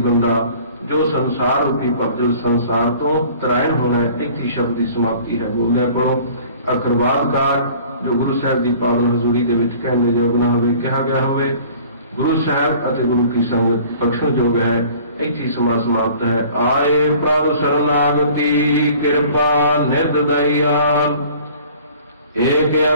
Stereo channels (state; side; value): inverted; both; correlation -0.50